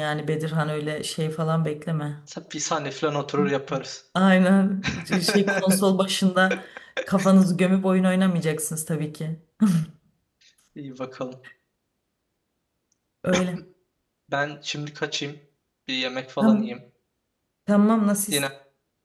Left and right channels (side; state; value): both; identical; correlation 1.00